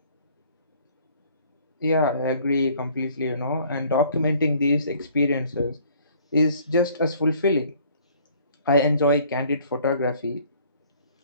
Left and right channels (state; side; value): inverted; both; correlation -0.57